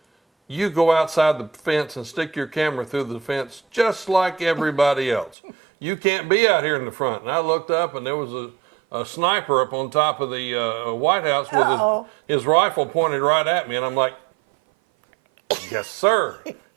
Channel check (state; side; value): drops out; left; at 5.4 s